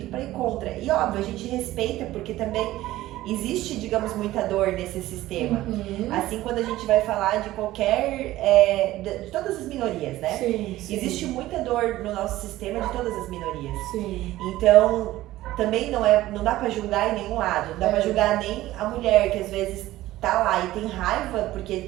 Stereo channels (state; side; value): quieter; left; 15.9 dB